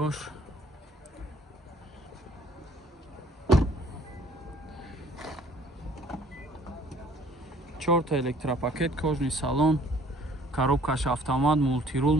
چهار تا الکتراپاکت کожный салон коробкаш автомат мультирул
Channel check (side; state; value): both; normal; correlation 0.56